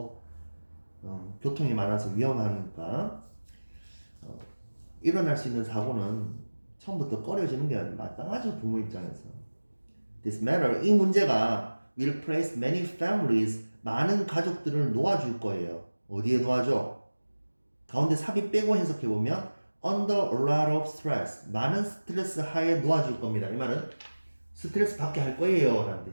교통이 많아서 위험하니까 일어날 수 있는 사고는 처음부터 꺼려지는 게 마땅하죠. 부모 입장에서. This matter, 이 문제가 will place many families, 많은 가족들을 놓아줄 거예요. 어디에 놓아줘? 가운데 삽입 빼고 해석해보면 under a lot of stress, 많은 스트레스 하에 놓아줄 겁니다. 이 말은 스트레스 받게 할 거예요 라는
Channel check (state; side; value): inverted; both; correlation -1.00